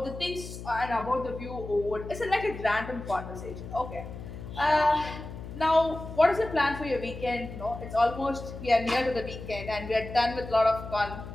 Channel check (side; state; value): left; noise; hum, 11 dB below the sound